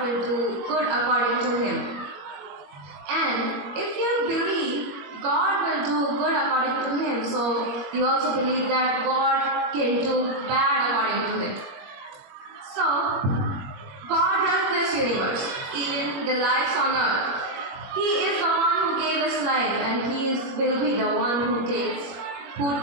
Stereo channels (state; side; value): late; left; 21 ms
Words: do good according to Him. And if you believe God will do good according to Him, so you also believe that God can do bad according to Him. So, God runs this universe, even the lives on earth. He is the one who gave us life, and He will be the one who